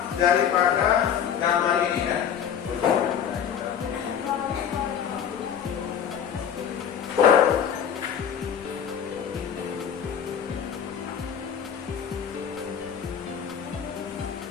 daripada gambar ini ya.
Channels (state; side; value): quieter; right; 8.4 dB